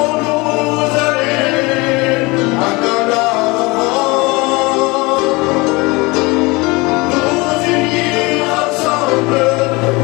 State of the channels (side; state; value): right; quieter; 24.5 dB